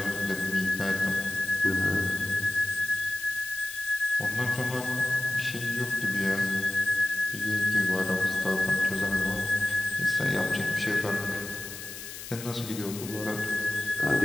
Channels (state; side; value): noise; left; hiss, 11 dB below the sound